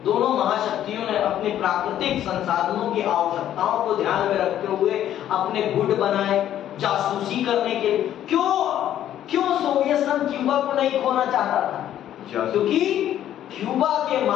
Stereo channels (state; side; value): quieter; right; 11.4 dB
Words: दोनों महाशक्तियों ने अपने प्राकृतिक संसाधनों की आवश्यकताओं को ध्यान में रखते हुए अपने गुट बनाए जासूसी करने के। क्यों सोवियत संघ क्यूबा को नहीं खोना चाहता था? क्योंकि क्यूबा के